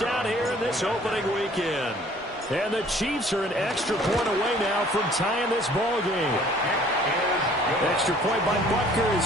here in this opening weekend. And the Chiefs are an extra point away now from tying this ball game. Extra point by Butker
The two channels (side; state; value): both; normal; correlation 0.55